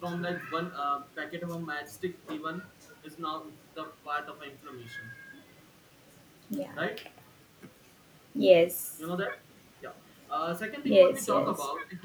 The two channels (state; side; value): identical; both; correlation 1.00